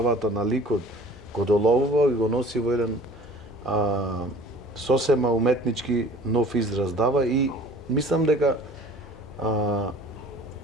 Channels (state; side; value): normal; both; correlation 0.47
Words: на ликот, го доловува и го носи во еден сосема уметнички нов израз дава и мислам дека